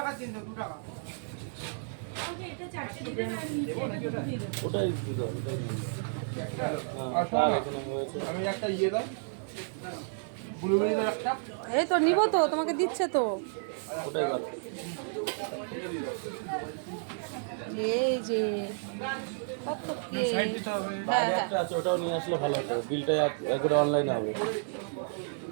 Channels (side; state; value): left; silent; digital silence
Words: দিন তো 2 টাকা। ওকে এটা 4টে দিবেন আর নিচে এটা দুটো দিয়ে দেবেন। ওটাই দিতে হবে, ওটাই নিয়ে আমি একটা ইয়ে দাও ব্লুবেরি দাও একটা। এই তো নিব তো, তোমাকে দিচ্ছে তো। ওটাই ভালো। এই যে কত কেক। সাইড দিতে হবে। হ্যাঁ বাইরে হ্যাঁ একটা আছে, ওটাও নিয়ে আসলে ভালো হতো। বিলটা একবারে অনলাইনে হবে।